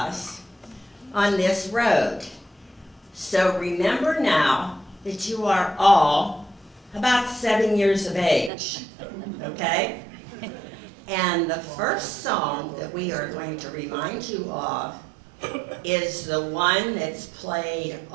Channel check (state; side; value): drops out; left; at 8.5 s